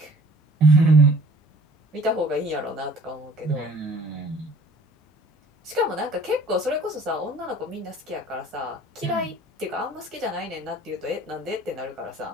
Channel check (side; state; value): both; normal; correlation 0.51